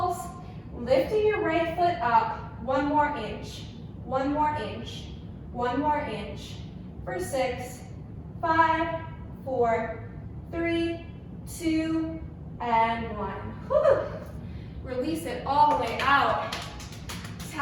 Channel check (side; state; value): both; identical; correlation 1.00